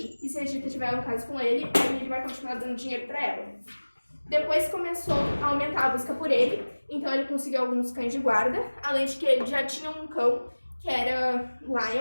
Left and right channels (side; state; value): both; inverted; correlation -1.00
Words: E se a Gita tiver um caso com ele, aí ele vai continuar dando dinheiro pra ela. Depois começou a aumentar a busca por ele. Então ele conseguiu alguns cães de guarda. Além de que ele já tinha um cão, que era